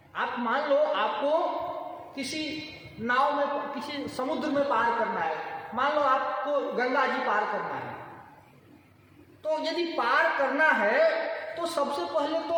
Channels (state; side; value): identical; both; correlation 1.00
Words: आप मान लो आपको किसी नाव में, किसी समुद्र में पार करना है, मान लो आपको गंगा जी पार करना है, तो यदि पार करना है तो सबसे पहले तो